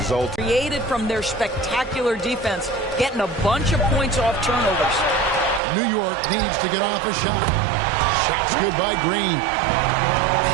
Created from their spectacular defense, getting a bunch of points off turnovers. New York needs to get off a shot. Shot's good by Green.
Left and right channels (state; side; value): drops out; left; at 5.6 s